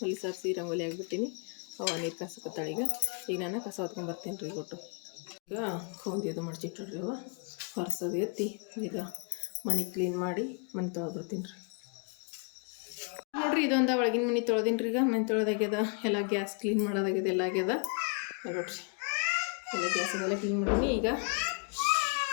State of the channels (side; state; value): right; quieter; 36.9 dB